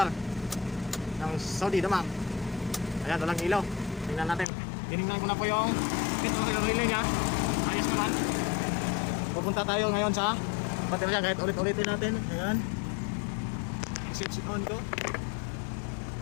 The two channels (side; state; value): right; drops out; at 4.5 s